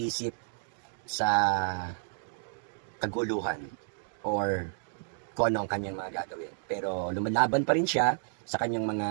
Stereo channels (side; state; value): left; silent; digital silence